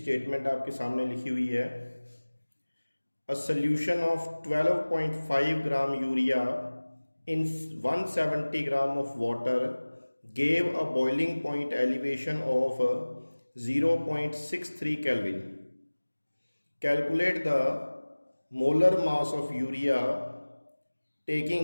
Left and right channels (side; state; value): both; inverted; correlation -1.00